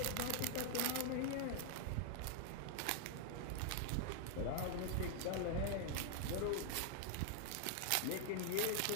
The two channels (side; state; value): both; different; correlation 0.00